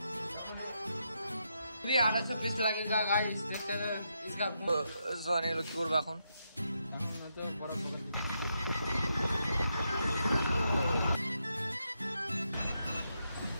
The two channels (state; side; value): inverted; both; correlation -0.81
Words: लगेगा गाइस। देखते हैं इसका सोने लो কি করব এখন তো বড় বড়